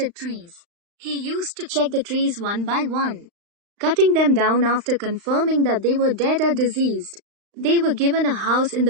trees. He used to check the trees one by one, cutting them down after confirming that they were dead or diseased. They were given a house in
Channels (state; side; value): late; left; 35 ms